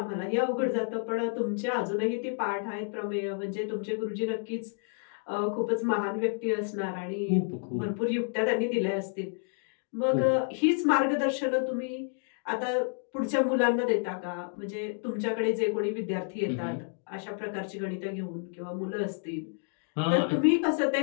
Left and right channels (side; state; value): right; silent; 58 dB below the other